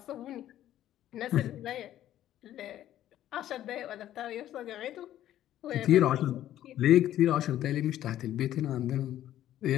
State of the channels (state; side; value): quieter; right; 12.5 dB